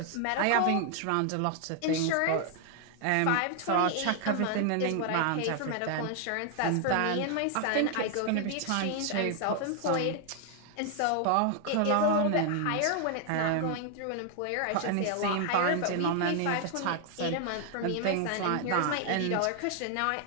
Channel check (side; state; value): both; different; correlation 0.00